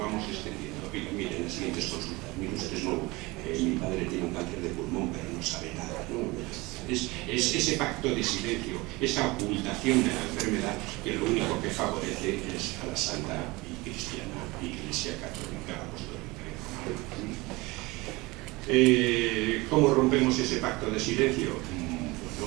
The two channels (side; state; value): left; quieter; 22.9 dB